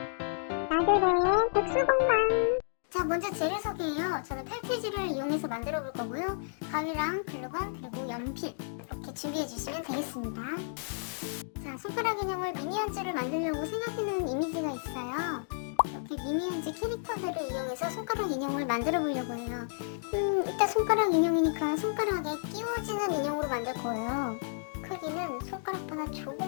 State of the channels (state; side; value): silent; right; digital silence